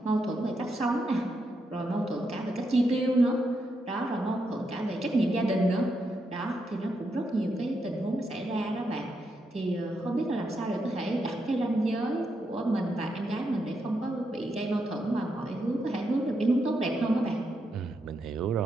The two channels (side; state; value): both; normal; correlation 0.82